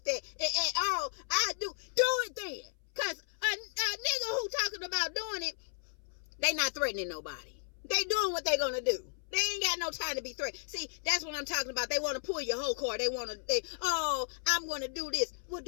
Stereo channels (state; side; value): silent; right; 55 dB below the other